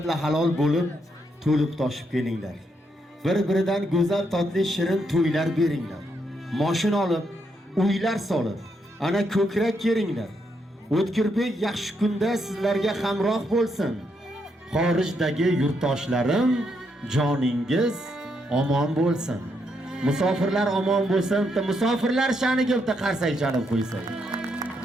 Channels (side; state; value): both; normal; correlation 0.78